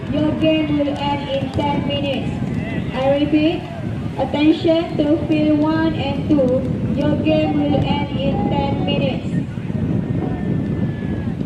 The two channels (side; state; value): both; identical; correlation 1.00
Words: Your game will end in 10 minutes. I repeat. Attention to field 1 and 2. Your game will